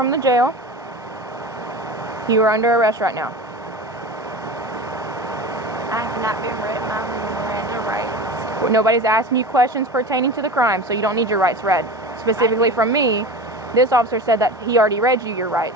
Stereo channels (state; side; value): normal; both; correlation 0.31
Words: the jail. You are under arrest right now. I have not been read my Miranda rights. Nobody's asking you questions pertaining to the crime, so you don't need your rights read. Specifically from me, this officer said that he already read you your